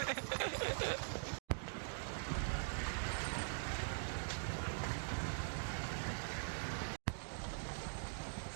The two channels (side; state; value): left; silent; digital silence